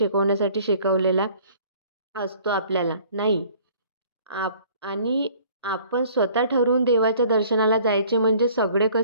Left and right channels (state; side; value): inverted; both; correlation -0.54